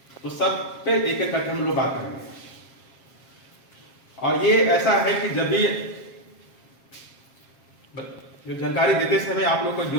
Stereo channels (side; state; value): right; late; 7.4 ms